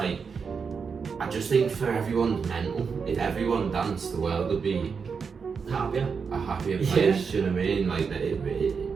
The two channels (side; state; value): left; quieter; 5.7 dB